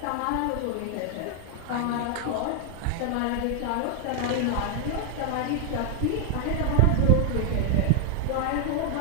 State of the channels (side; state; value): both; different; correlation 0.00